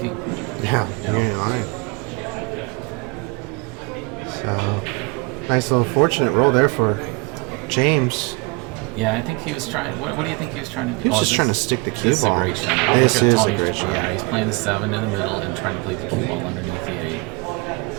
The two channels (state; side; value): quieter; left; 28.0 dB